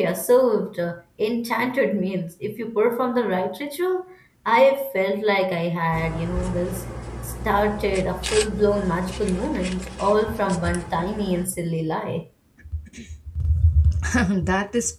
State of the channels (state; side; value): identical; both; correlation 1.00